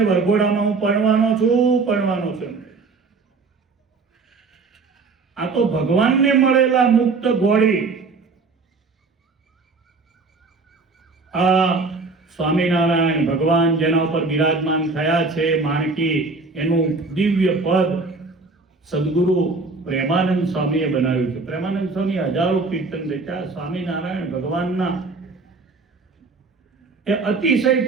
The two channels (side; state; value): left; quieter; 4.0 dB